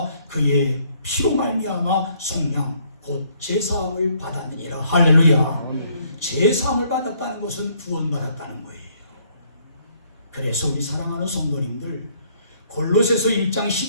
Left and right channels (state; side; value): inverted; both; correlation -0.66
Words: 그의 피로 말미암아 속량 곧 제사함을 받았느니라. 할렐루야. 제사함을 받았다는 것은 구원받았다는 거예요. 그래서 우리 사랑하는 성도님들 골로새서 1장